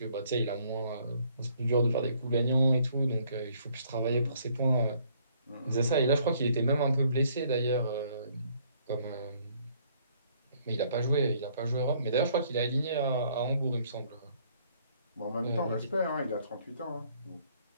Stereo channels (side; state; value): both; inverted; correlation -0.64